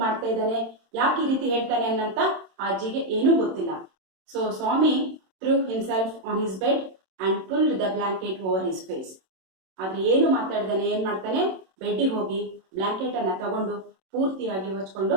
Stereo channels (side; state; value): left; late; 27 ms